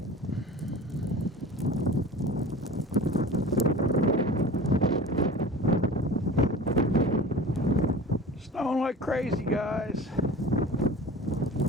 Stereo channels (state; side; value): normal; both; correlation 0.38